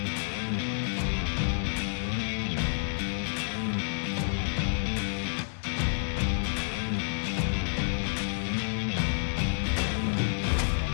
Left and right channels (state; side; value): silent; right; 58 dB below the other